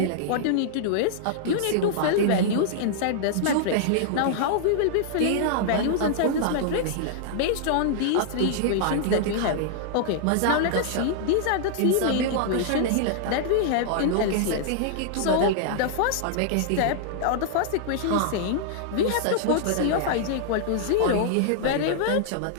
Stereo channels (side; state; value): both; different; correlation -0.01